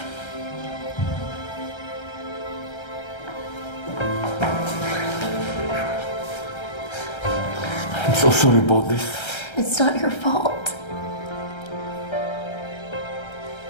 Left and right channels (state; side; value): late; right; 1.3 ms